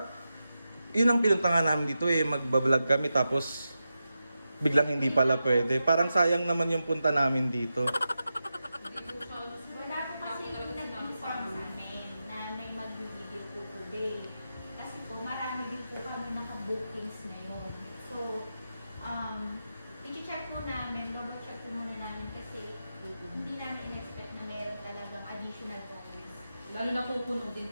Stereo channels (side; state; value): both; inverted; correlation -0.90